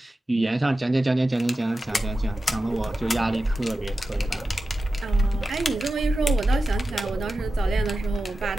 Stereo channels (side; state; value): both; normal; correlation 0.93